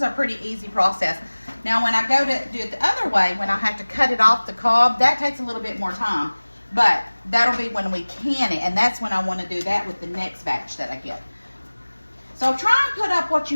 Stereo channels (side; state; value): both; inverted; correlation -1.00